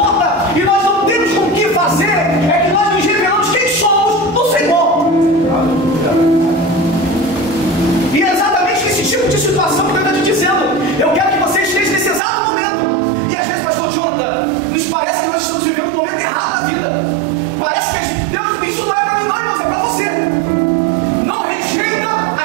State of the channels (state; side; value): drops out; left; at 12.2 s